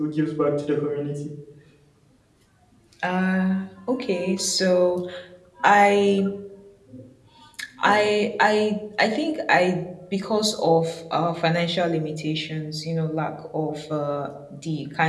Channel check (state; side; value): identical; both; correlation 1.00